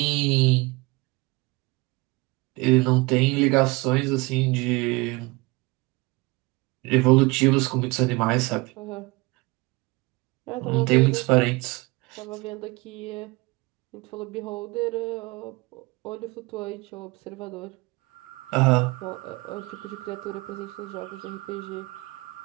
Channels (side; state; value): left; quieter; 24.6 dB